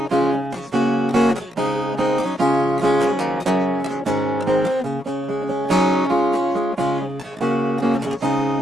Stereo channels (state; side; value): normal; both; correlation 0.79